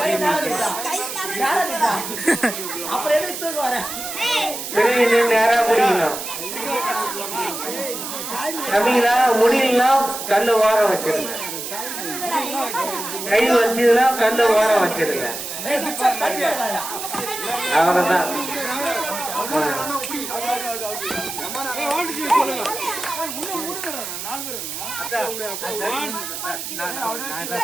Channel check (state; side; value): noise; right; hiss, 7 dB below the sound